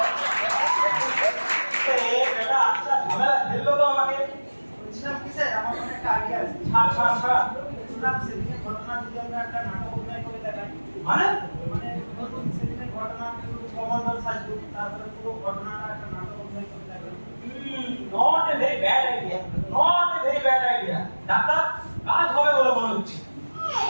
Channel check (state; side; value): inverted; both; correlation -1.00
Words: ए बेटा अच्छा झमेला खेल लो तो আমাকে বলছিলাম কি স্যার, আমার মনে একটা আইডিয়া আছে। ছাড় শুনলাম সেদিনের ঘটনা যদি আমরা একটা নাটক অভিনয় করে দেখাই, মানে মানে ধরুন সেদিনের ঘটনা কমান্ডার সাজু, তারপরে পুরো ঘটনাটা একটা নাটক অভিনয় করে দেখাই। Not a very bad idea, not a very bad idea. Doctor কাজ হবে বলে মনে হচ্ছে।